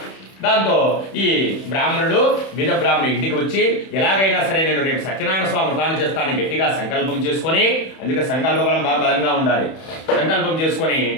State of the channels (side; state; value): right; late; 31 ms